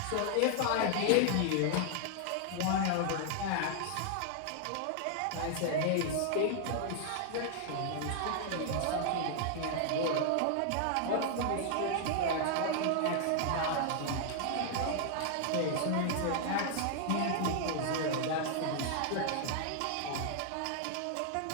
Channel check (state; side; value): different; both; correlation 0.00